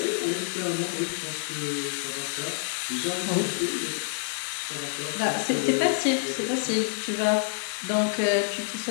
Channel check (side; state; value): right; silent; digital silence